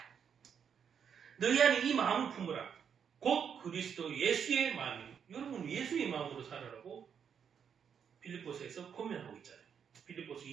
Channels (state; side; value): quieter; left; 7.5 dB